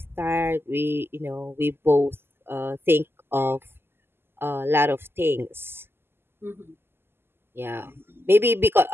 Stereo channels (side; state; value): left; late; 0.11 ms